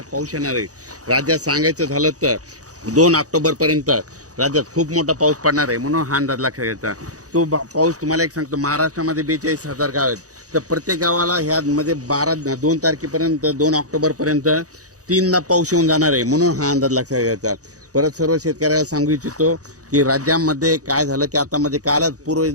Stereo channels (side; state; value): left; late; 0.66 ms